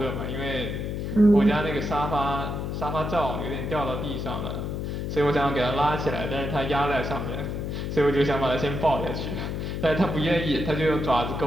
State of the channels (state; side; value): noise; left; hum, 3 dB below the sound